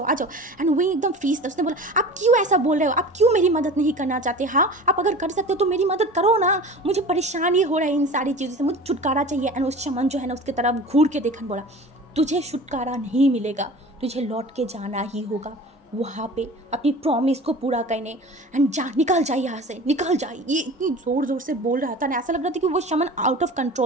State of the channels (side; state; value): both; normal; correlation 0.38